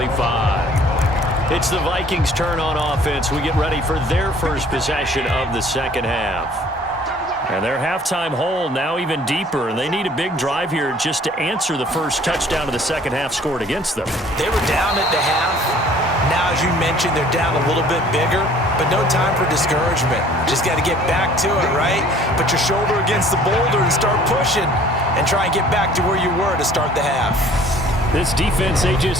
It's the Vikings' turn on offense. We get ready for their first possession of the second half. And their halftime hole now even deeper, and they need a big drive here just to answer the first touchdown of the second half scored against them. They were down at the half. Now, as you mentioned, they're down a little bit bigger, but no time for discouragement. Just got to get back to it, right? Put your shoulder against the boulder and start pushing and try and get back to where you were to start the half. This defense, they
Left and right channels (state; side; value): normal; both; correlation 0.54